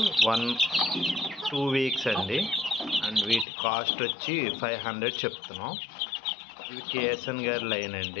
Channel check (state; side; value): drops out; right; at 3.5 s